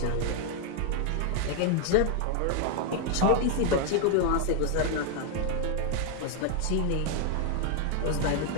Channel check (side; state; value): both; different; correlation 0.01